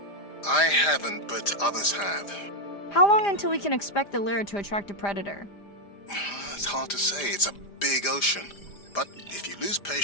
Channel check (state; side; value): late; right; 5.0 ms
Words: I haven't, but others have. How long until we can expect the lure to attract a predator? It's hard to say. It's a big ocean. But if you lose